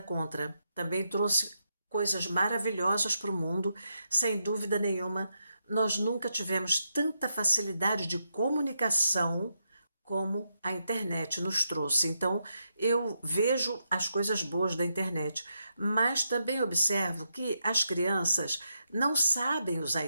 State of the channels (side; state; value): both; inverted; correlation -0.83